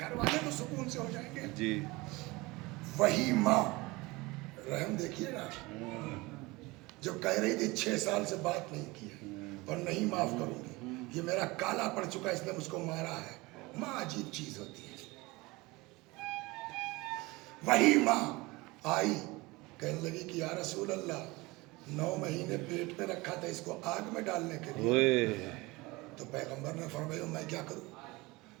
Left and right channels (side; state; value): left; quieter; 22.7 dB